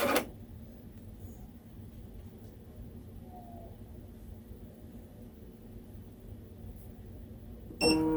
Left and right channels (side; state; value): both; identical; correlation 1.00